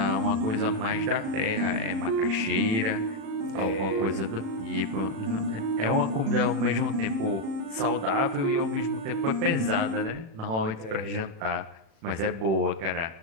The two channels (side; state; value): left; late; 36 ms